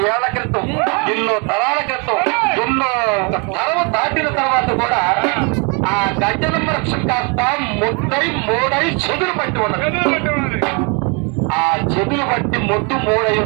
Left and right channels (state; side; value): quieter; left; 33.3 dB